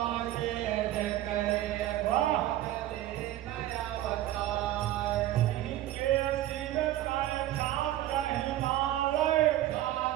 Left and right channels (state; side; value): quieter; left; 14.0 dB